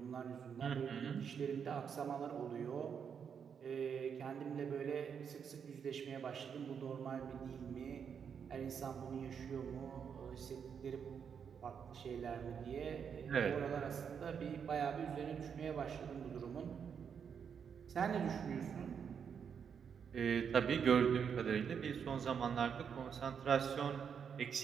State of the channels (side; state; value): left; quieter; 7.1 dB